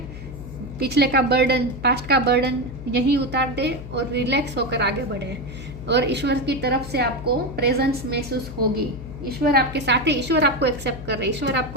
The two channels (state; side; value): noise; left; hum, 12 dB below the sound